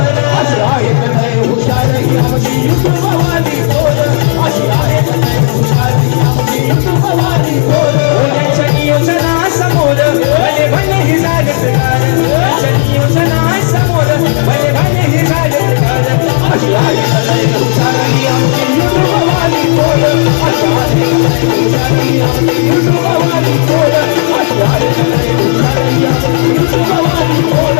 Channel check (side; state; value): right; silent; digital silence